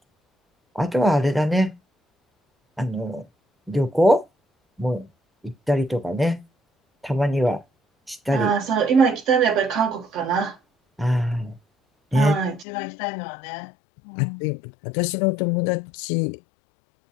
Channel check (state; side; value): drops out; right; at 12.7 s